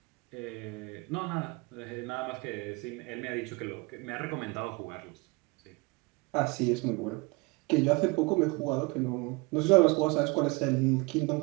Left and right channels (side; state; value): left; quieter; 26.8 dB